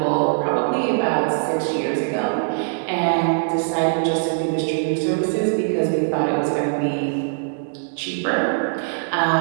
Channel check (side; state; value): left; silent; digital silence